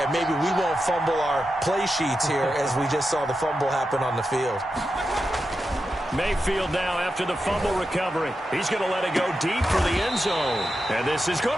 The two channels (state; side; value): normal; both; correlation 0.89